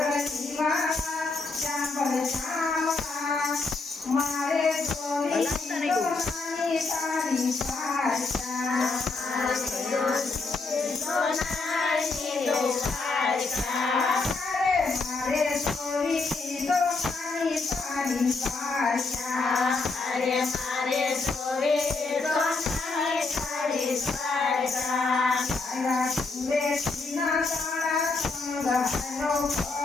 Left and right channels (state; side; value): quieter; right; 3.9 dB